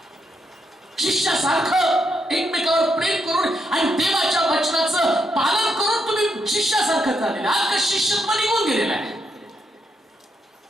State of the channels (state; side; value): normal; both; correlation 0.80